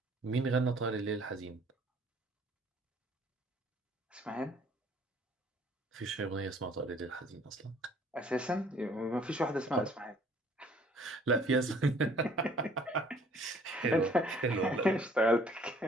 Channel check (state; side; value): normal; both; correlation 0.57